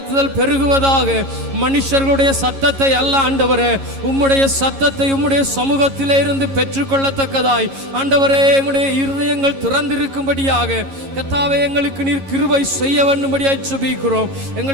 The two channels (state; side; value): late; left; 11 ms